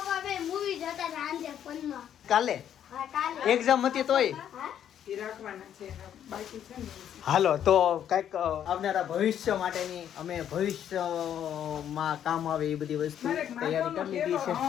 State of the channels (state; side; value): quieter; right; 9.8 dB